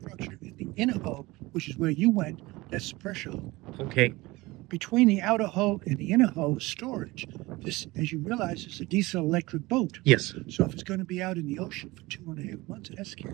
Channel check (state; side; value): quieter; left; 21.1 dB